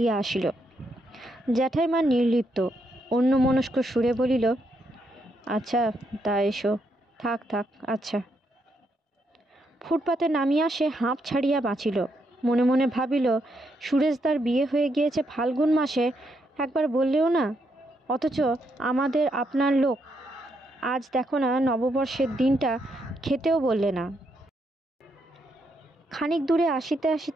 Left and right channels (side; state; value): both; normal; correlation 0.78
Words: আসিল। জ্যাঠাইমা নির্লিপ্ত অন্যমনস্ক সুরে বলিল, আচ্ছা তা এসো, থাক থাক, আচ্ছা। ফুটপাতে নামিয়া সে হাঁপ ছাড়িয়া বাঁচিল। মনে মনে ভাবিল, সুরেশদার বিয়ে হয়ে গিয়েছে ফাল্গুন মাসে, একবার বললেও না, অথচ আমাদের আপনার লোক, আজ দেখো না নববর্ষের দিনটা খেতেও বললে না। খানিক দূরে আসিতে